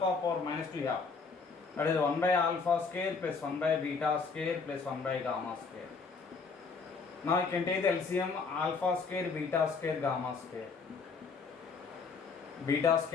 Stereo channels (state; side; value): quieter; right; 4.8 dB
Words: minus 2 yeah. That is 1 by alpha square plus 1 by beta square plus 1 by gamma square. Now you can take the LCM alpha square, beta square, gamma square. Beta